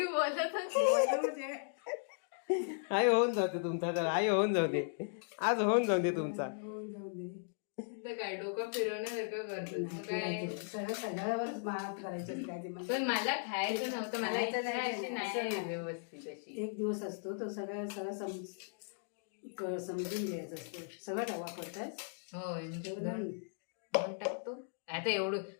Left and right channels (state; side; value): silent; right; digital silence